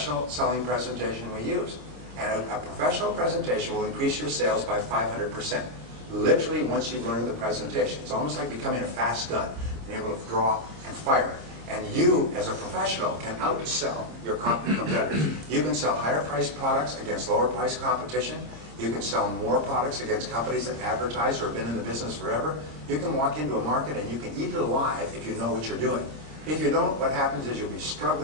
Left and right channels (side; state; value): left; late; 26 ms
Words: selling presentation we use. And a professional presentation will increase your sales by 500%. Literally once you've learned the presentation. It's almost like becoming a fast gun, being able to draw and fire. And you, as a professional, can outsell your competitors. You can sell higher priced products against lower priced competition. You can sell more products against companies that advertise or have been in the business forever. You can walk into a market and you can eat it alive if you know what you're doing. If you don't, what happens is you'll be